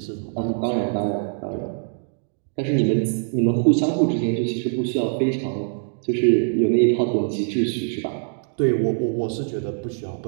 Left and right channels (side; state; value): left; silent; digital silence